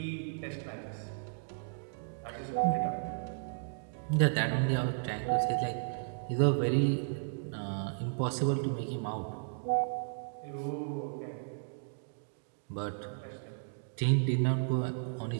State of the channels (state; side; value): silent; left; digital silence